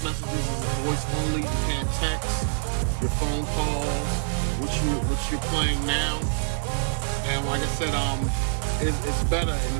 messages is voice only. You can't text. Your phone calls, which you're playing now, and like I said, it's better, and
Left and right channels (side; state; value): left; silent; digital silence